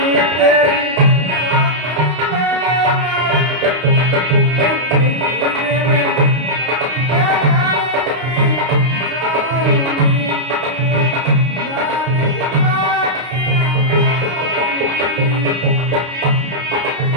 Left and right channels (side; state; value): left; late; 32 ms